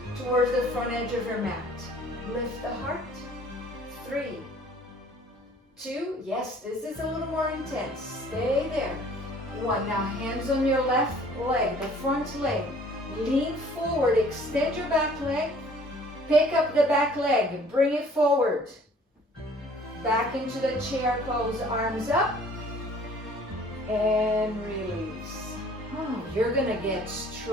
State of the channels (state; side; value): normal; both; correlation 0.54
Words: towards the front edge of your mat. Lift the heart. 3. 2. Yes, this is a little more intense. Stay there. 1. Now hands on your left leg, the front leg. Lean forward. Extend your back leg. Pick up the back leg. Bring it forward. Back into the chair pose. Arms up. And release. Oh, you're going to get